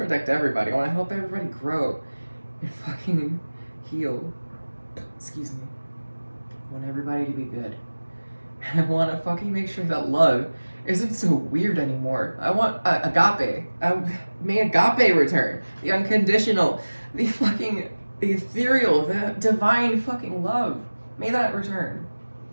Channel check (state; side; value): inverted; both; correlation -1.00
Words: everybody. I want to help everybody grow and fucking heal. Excuse me. I want everybody to be good. And I want to fucking make sure that love isn't so weird anymore. I want agape. May agape return. The unconditional, the fucking ethereal, the divine fucking love. May that return.